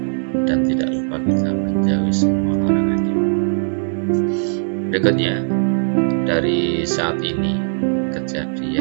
dan tidak lupa kita menjauhi semua larangannya. Berikutnya, dari saat ini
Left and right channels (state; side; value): silent; left; 65 dB below the other